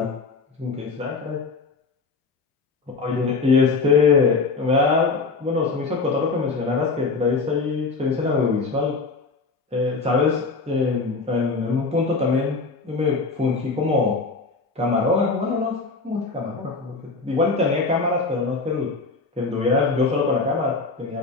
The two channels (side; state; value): right; quieter; 4.1 dB